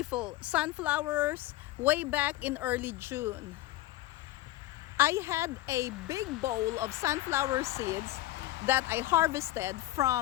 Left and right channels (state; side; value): quieter; right; 16.0 dB